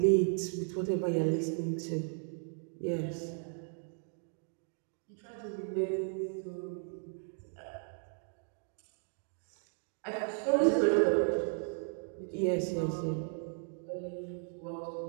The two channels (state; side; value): silent; left; 54 dB below the other